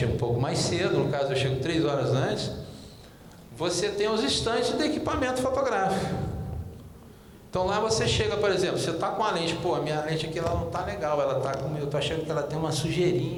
um pouco mais cedo, no caso eu chego 3 horas antes, você tem os estantes de equipamento fotográfico. Então lá você chega, por exemplo, você está com a lente, a minha lente aqui ela não está legal, ela está com, eu estou achando que ela tem uma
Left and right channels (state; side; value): identical; both; correlation 1.00